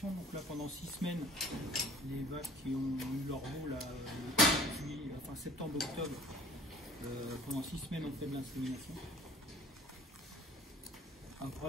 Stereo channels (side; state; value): both; normal; correlation 0.50